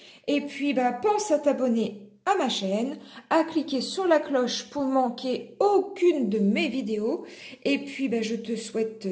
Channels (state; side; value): identical; both; correlation 1.00